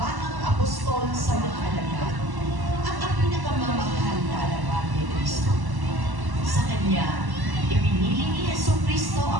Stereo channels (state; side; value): late; left; 1.1 ms